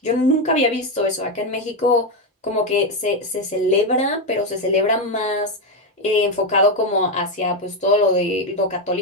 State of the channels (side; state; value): both; normal; correlation 0.07